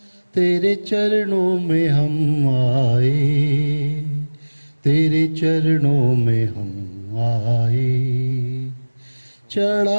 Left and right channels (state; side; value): inverted; both; correlation -1.00